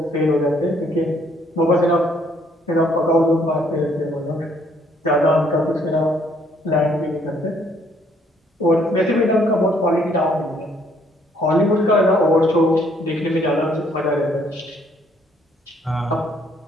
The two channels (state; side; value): normal; both; correlation 0.66